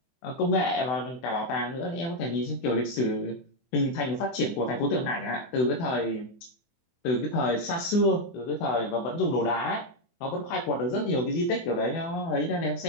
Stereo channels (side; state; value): right; late; 24 ms